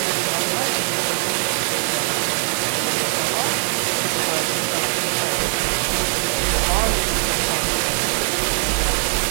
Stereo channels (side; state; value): left; silent; digital silence